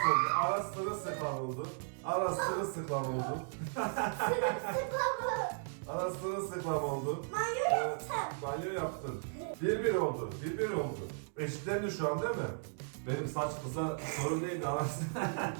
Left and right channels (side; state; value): left; silent; digital silence